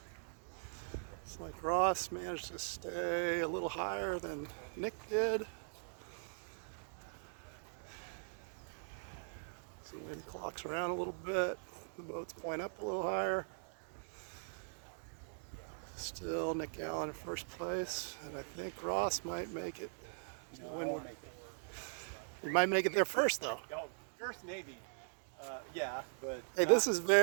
It's like Ross managed to stay a little higher than Nick did. So the wind clocks around a little bit. The boats point up a little higher. Still Nick Allen in first place, and I think Ross might make it. He might make it there first, though. Oh, first maybe. Yeah, but. Hey, this is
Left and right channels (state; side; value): silent; left; digital silence